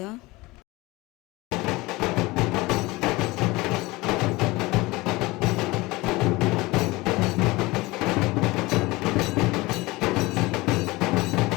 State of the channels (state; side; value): quieter; right; 21.7 dB